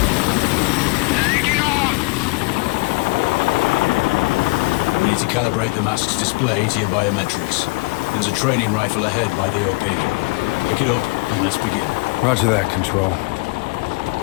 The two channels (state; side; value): quieter; right; 27.9 dB